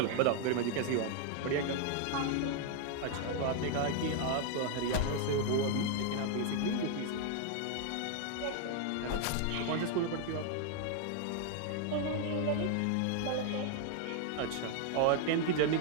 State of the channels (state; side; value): different; both; correlation 0.00